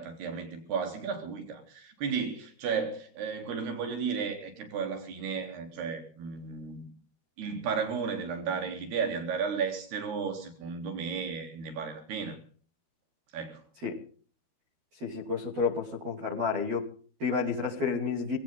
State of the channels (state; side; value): late; left; 13 ms